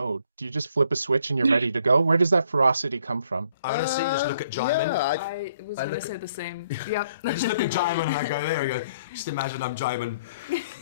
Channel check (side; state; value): both; inverted; correlation -0.66